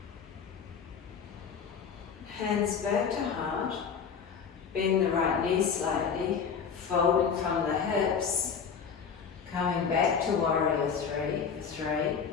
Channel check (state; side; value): quieter; right; 6.5 dB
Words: Hands back to heart. Bend the right knee slightly, folding from the hips, coming back to warrior 3 for 3.